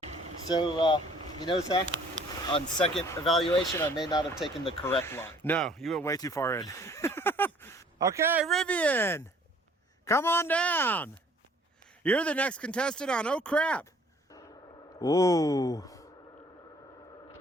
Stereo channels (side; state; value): both; normal; correlation 0.56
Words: So, you know, Zach, on second evaluation, I may not have taken the correct line. No, you went way too far in. Okay, Rivian, come on down. You're the next contestant on Oh Crap. Ooh.